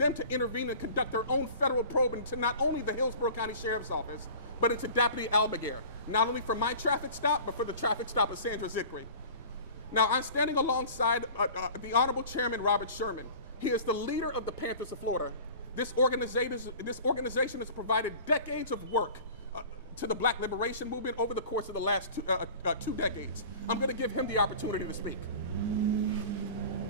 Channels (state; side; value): inverted; both; correlation -0.40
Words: to intervene and conduct their own federal probe into not only the Hillsborough County Sheriff's Office, but into Deputy Almaguer, not only for my traffic stop, but for the traffic stop of Sandra Zikry. Now, I'm standing alongside the Honorable Chairman Robert Sherman. He is the leader of the Panthers of Florida. This organization has provided decades of work to the Black liberation movement over the course of the last 2 decades. I'm going to give him the opportunity to speak.